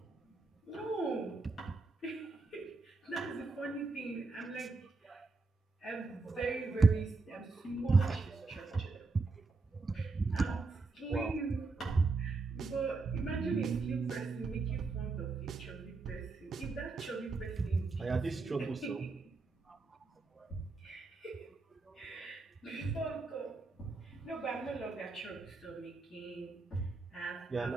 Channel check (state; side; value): quieter; left; 3.8 dB